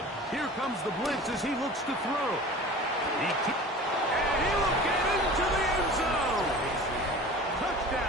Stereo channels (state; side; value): normal; both; correlation 0.39